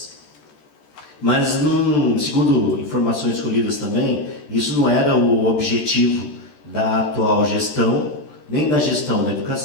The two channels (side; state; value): right; late; 13 ms